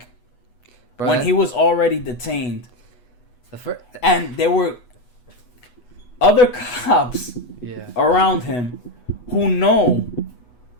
when he was already detained. And there were other cops around him who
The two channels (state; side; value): late; right; 8.1 ms